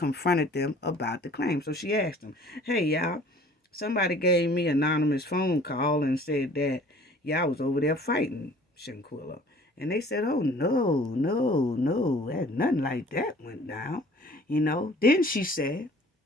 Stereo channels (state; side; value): normal; both; correlation 0.51